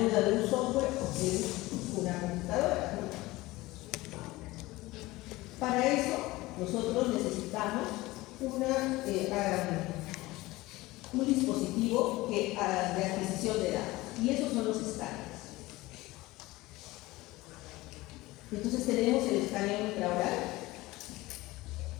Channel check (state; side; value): quieter; right; 19.7 dB